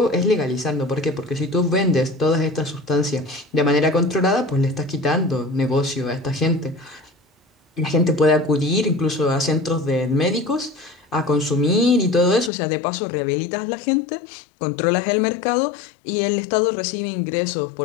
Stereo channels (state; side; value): drops out; right; at 12.5 s